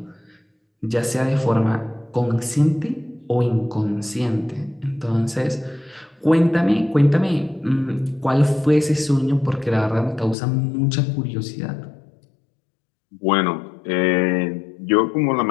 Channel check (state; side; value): drops out; right; at 10.4 s